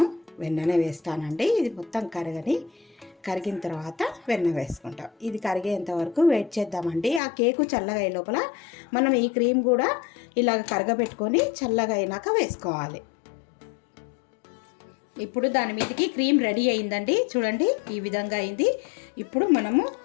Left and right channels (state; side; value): drops out; right; at 7.2 s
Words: వెన్ననే వేస్తానండి. ఇది మొత్తం కరిగిన తర్వాత వెన్న వేసుకుంటాం. ఇది కరిగేంత వరకు వెయిట్ చేద్దామండి. ఆ కేకు చల్లగా అయ్యే లోపల మనం ఈ క్రీమ్ కూడా ఇలాగ కరగబెట్టుకొని చల్లగా అయినాక వేసుకోవాలి. ఇప్పుడు దాని మీదకి క్రీమ్ రెడీ అయిందండి. చూడండి ఈ విధంగా అయింది. ఇప్పుడు మనము